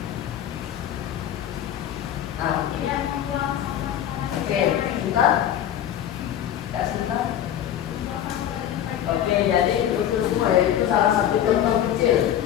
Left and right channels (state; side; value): quieter; right; 10.7 dB